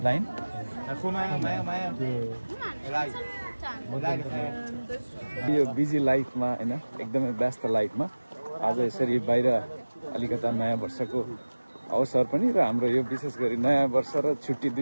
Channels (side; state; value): both; inverted; correlation -1.00